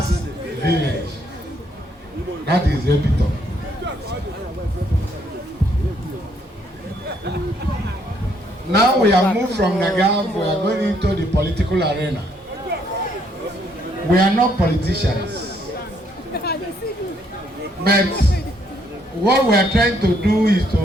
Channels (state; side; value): normal; both; correlation 0.70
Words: village. That is the epitome. Now we have moved from Nagav, we are going into the political arena. We are not politicians. But what we are trying to do is